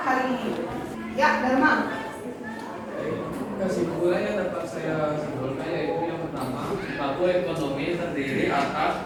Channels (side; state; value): both; identical; correlation 1.00